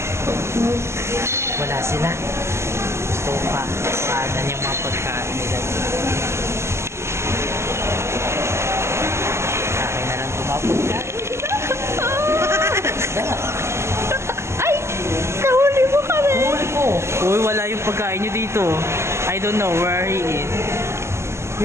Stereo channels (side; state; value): left; late; 0.13 ms